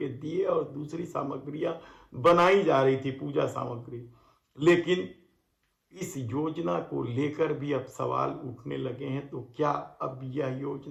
दिए और दूसरी सामग्रियां बनाई जा रही थी, पूजा सामग्री। लेकिन इस योजना को लेकर भी अब सवाल उठने लगे हैं, तो क्या अब यह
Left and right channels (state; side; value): identical; both; correlation 1.00